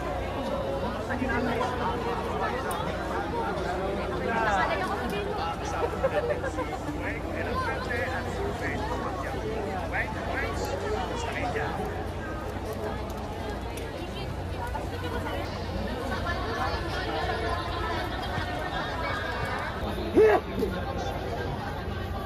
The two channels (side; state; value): both; identical; correlation 1.00